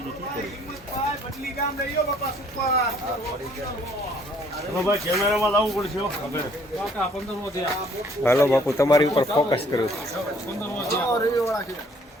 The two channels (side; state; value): both; normal; correlation 0.61